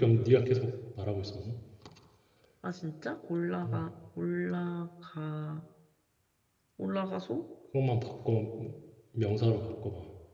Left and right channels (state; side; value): identical; both; correlation 1.00